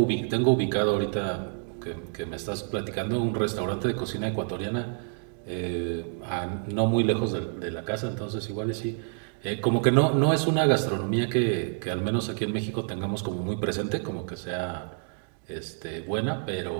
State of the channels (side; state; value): left; silent; 58 dB below the other